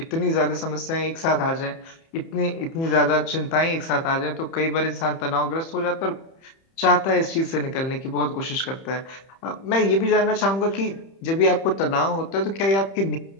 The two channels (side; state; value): right; late; 30 ms